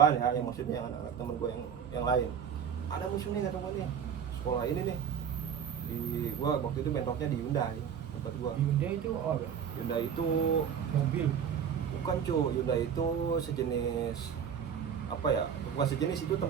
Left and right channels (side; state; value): left; quieter; 7.9 dB